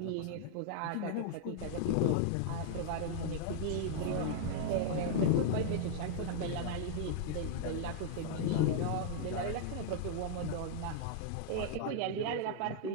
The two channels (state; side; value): different; both; correlation -0.01